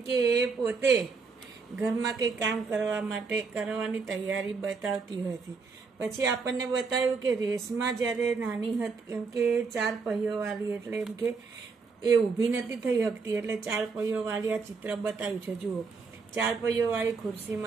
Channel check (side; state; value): left; quieter; 4.8 dB